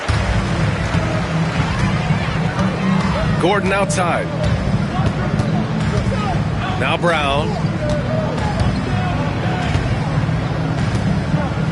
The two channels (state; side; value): identical; both; correlation 1.00